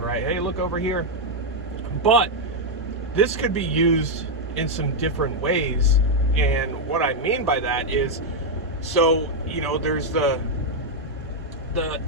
Hey, look over here. But this could be used in some different ways. And what I mean by that is, so, there's the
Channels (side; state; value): both; normal; correlation 0.00